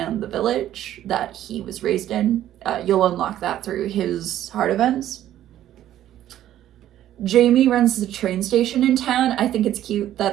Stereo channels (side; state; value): left; quieter; 12.3 dB